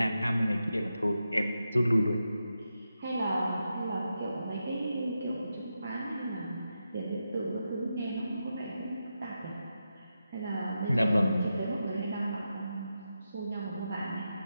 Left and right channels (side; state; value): both; inverted; correlation -0.88